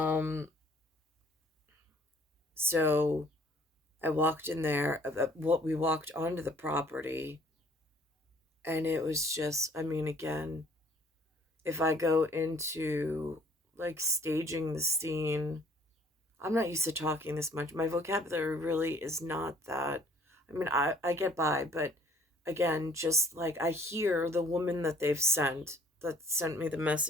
so I walked in there. What we walked onto the property, and it was just. I mean, again, if I go into like staging the scene, I'm not used to talking this much. My vocabulary really is not that. I mean, I get by, but again, just like I hear the woman that sent me the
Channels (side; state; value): both; normal; correlation 0.57